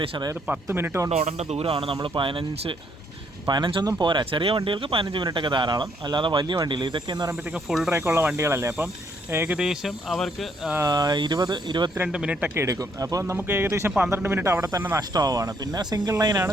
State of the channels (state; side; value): normal; both; correlation 0.70